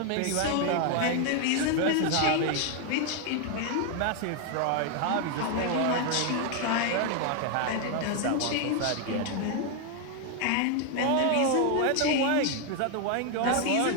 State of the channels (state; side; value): different; both; correlation 0.01